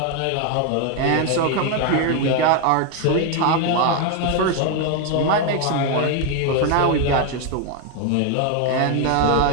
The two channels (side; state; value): both; different; correlation 0.01